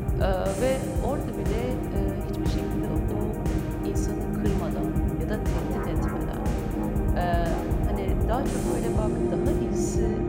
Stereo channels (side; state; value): both; identical; correlation 1.00